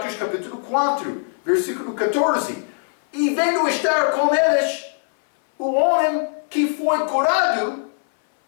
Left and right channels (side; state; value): right; silent; 61 dB below the other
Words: capítulo 4, versículo 14. E vendo estar com eles, o homem que foi curado,